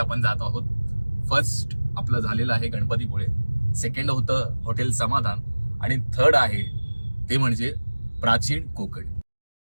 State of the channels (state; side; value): inverted; both; correlation -1.00